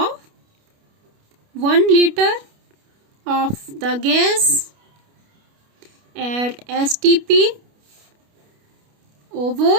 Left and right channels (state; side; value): late; left; 29 ms